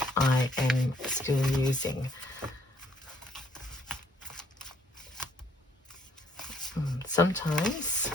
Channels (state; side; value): normal; both; correlation 0.66